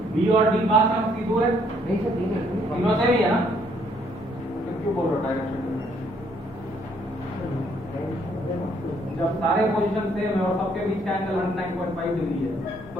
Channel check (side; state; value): both; normal; correlation 0.67